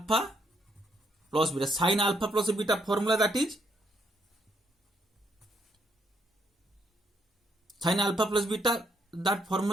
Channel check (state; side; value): normal; both; correlation 0.73